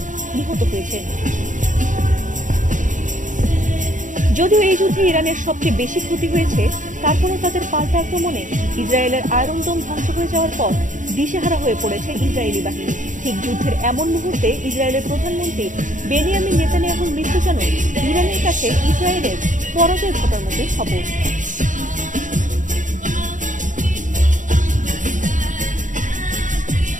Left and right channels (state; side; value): late; left; 0.37 ms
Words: নিহত হয়েছেন। যদিও এই যুদ্ধে ইরানের সবচেয়ে বেশি ক্ষতি হয়েছে, তারপরও তাদের পাল্টা আক্রমণে ইসরায়েলের আয়রন ডোম ধ্বংস হয়ে যাওয়ার পর দিশেহারা হয়ে পড়েছে ইসরায়েলি বাহিনী। ঠিক যুদ্ধের এমন মুহূর্তে ইসরায়েলের প্রধানমন্ত্রী বেনিয়ামিন নেতানিয়াহুর মৃত্যু যেন ইরানের কাছে ইসরায়েলের পরাজয় ঘটার মতোই খবর।